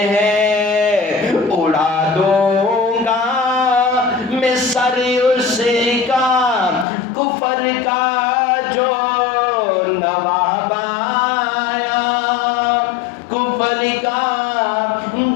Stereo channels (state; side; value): drops out; right; at 6.9 s